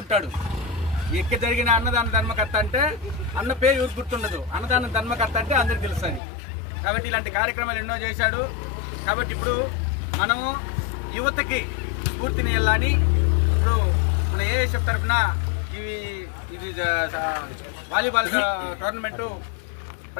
ఎక్కడ జరిగిన అన్నదాన ధర్మకర్త అంటే అన్న పేరు ఎవరు గుర్తుండదు, అన్నదాన ధర్మకర్త అంటే అందరికి తెలుస్తుంది. కాబట్టి ఇలాంటి కార్యక్రమాలు ఎన్నో చేశాడు. కాబట్టి ఇప్పుడు మనము యువతకి స్ఫూర్తిని వెళ్ళాలని ఇప్పుడు మన ఏఎస్ఎఫ్ తరఫున ఇది వాలీబాల్ టోర్నమెంటు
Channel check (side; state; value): right; drops out; at 6.2 s